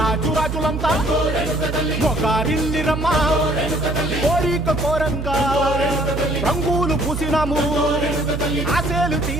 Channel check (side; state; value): right; noise; hum, 5 dB below the sound